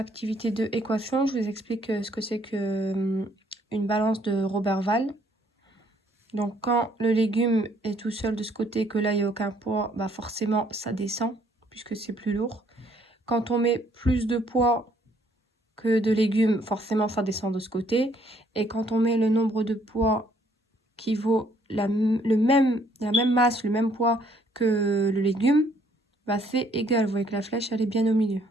2, équation. Je vous explique ce que c'est que une balance de Roberval. Donc, quand le légume est tout seul de ce côté et que là, il n'y a aucun poids, bah forcément, ça descend puisque c'est plus lourd. Quand on met plus de poids que de légumes, forcément, ça descend de ce côté. Et quand on met le nombre de poids qui vaut la même masse, le même poids que le légume, bah c'est égal. Vous voyez que la flèche, elle est bien au milieu.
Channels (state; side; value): normal; both; correlation 0.65